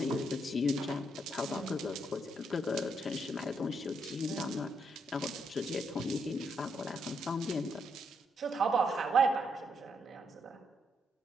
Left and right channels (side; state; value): both; normal; correlation 0.77